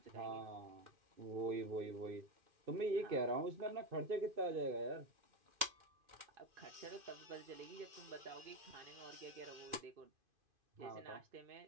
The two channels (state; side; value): late; left; 2.5 ms